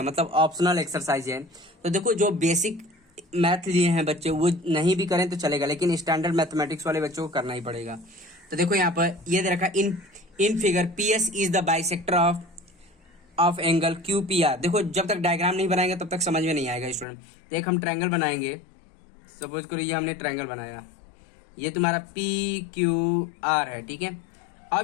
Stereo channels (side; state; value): right; drops out; at 17.1 s